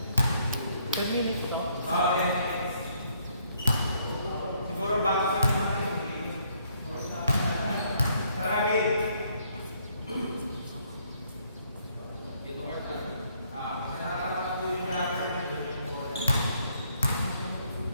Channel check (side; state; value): both; inverted; correlation -0.68